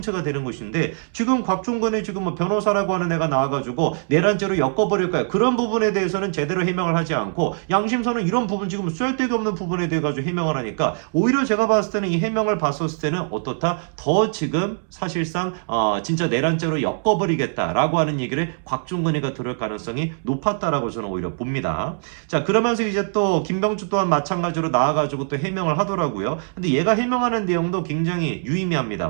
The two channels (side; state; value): left; silent; 64 dB below the other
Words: 되는 것인데 지금 곽종근의 지금 뭐 변호사라고 하는 애가 나와가지고 내란죄로 엮어버릴 거야. 그런 부분에 대해서는 제대로 해명을 하지 않고 양심선은 이런 부분 지금 쓸데기 없는 부분에 대해 가지고 해명을 하니까 오히려 제가 봤을 때는 이 해명을 봤었을 때는 어떻다? 더 지금 사실상 진짜 내란죄로 엮어버리겠다라고 하는 얘기를 곽종근이가 들을 가능성이 높았다라고 저는 오히려 봅니다. 자 그러면서 이제 또 김병주 또한 마찬가지로 나와가지고 또 해명을 하더라고요. 근데 얘가 해명하는 내용도 굉장히 유의미합니다.